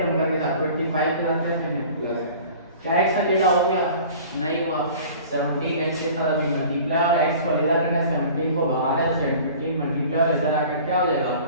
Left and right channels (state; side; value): inverted; both; correlation -0.44